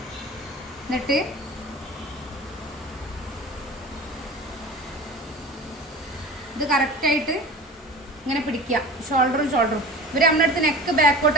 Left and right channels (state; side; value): normal; both; correlation 0.37